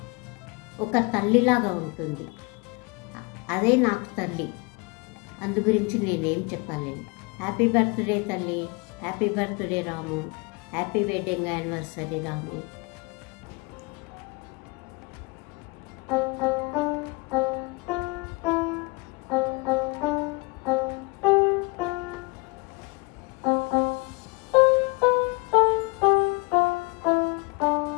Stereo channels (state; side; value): quieter; right; 27.5 dB